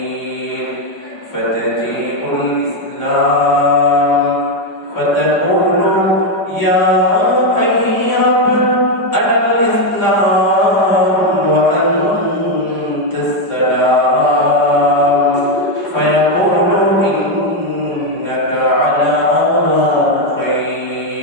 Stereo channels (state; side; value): late; right; 5.1 ms